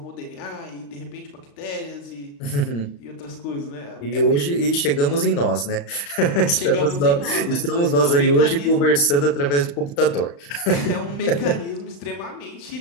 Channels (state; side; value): late; right; 35 ms